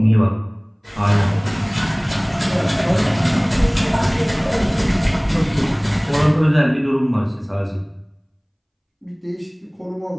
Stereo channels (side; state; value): both; identical; correlation 1.00